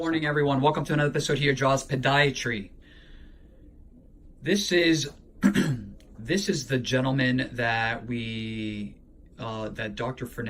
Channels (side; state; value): both; identical; correlation 1.00